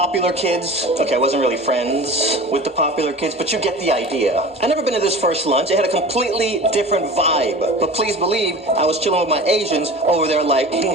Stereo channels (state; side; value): normal; both; correlation 0.36